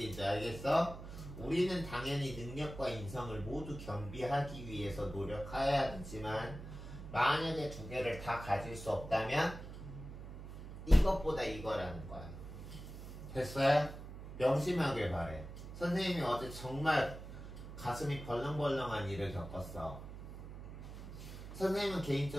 알겠어? 우리는 당연히 능력과 인성을 모두 겸비하기 위해서 노력해야겠지만 만약에 두 개를 다 가질 수 없다면 이것보다 이거라는 거야. 됐어요? 명심하길 바래. 선생님이 어제 정말 가슴이 벌렁벌렁한 일을 겪었어. 선생님은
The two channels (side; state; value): right; noise; hum, 11 dB below the sound